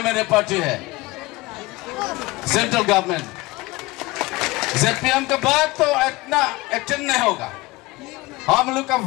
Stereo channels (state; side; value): quieter; right; 21.3 dB